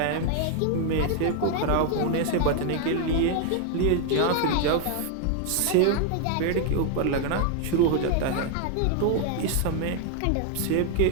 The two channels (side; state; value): both; different; correlation 0.00